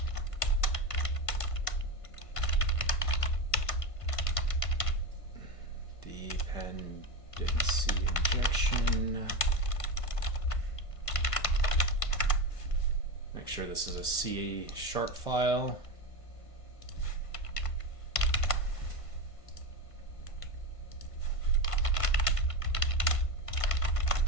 Dependency injection. Make sure this is a C# file.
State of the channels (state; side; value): late; right; 1.5 ms